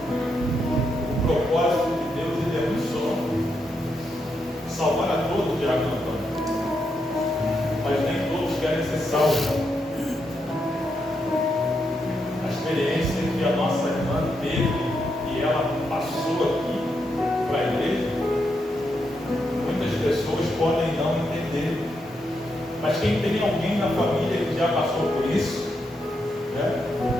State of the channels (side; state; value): both; normal; correlation 0.82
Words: O propósito de Deus, ele é um só: salvar a todos, Diácono Antônio. Mas nem todos querem ser salvos. A experiência que a nossa irmã teve e ela passou aqui para a igreja, muitas pessoas podem não entender. Mas quem tem alguém na família que já passou por isso, né,